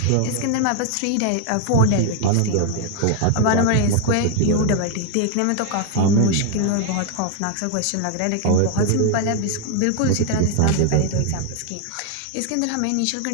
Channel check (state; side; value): different; both; correlation 0.00